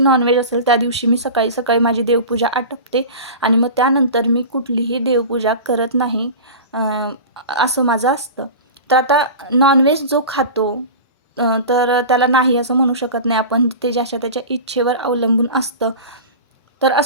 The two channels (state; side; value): inverted; both; correlation -0.31